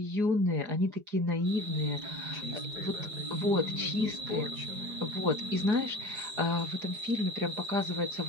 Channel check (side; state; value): left; late; 4.8 ms